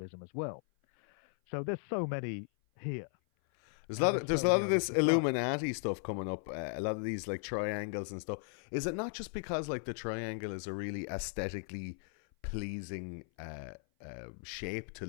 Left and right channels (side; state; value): right; silent; 54 dB below the other